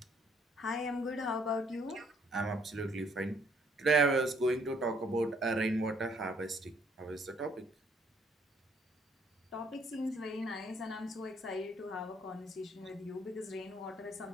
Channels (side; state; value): both; normal; correlation 0.66